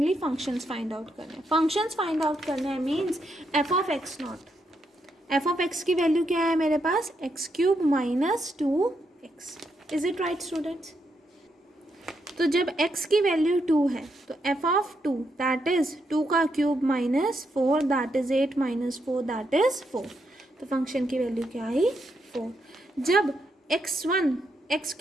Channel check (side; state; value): both; normal; correlation 0.80